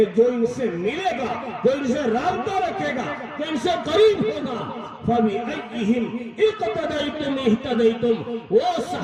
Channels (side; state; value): both; identical; correlation 1.00